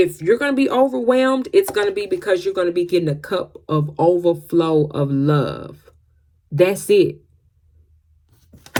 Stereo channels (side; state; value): both; identical; correlation 1.00